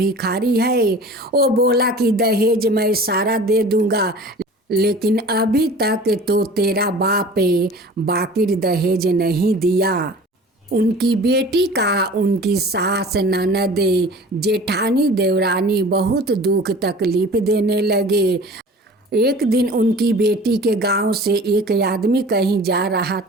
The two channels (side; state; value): both; normal; correlation 0.42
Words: है, वो बोला कि दहेज मैं सारा दे दूंगा, लेकिन अभी तक तो तेरा बाप बाकी दहेज नहीं दिया। उनकी बेटी का उनकी सास ननद जेठानी देवरानी बहुत दुख तकलीफ देने लगे। एक दिन उनकी बेटी के गांव से एक आदमी कहीं जा रहा